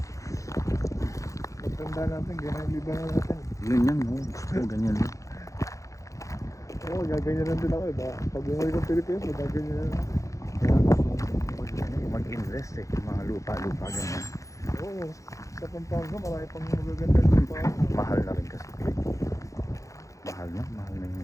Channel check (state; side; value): late; right; 0.15 ms